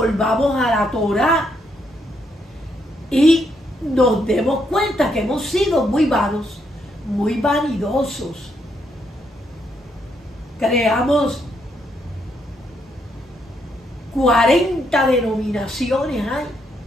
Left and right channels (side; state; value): both; normal; correlation 0.76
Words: a la Torá y nos demos cuenta que hemos sido muy vanos, muy vanidosos. Creamos 40 denominaciones hay.